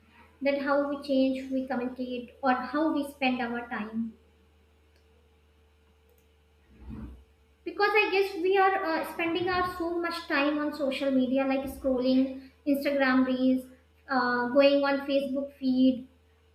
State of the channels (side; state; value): both; identical; correlation 1.00